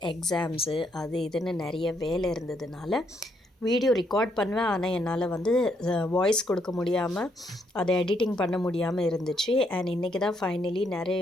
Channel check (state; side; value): normal; both; correlation 0.74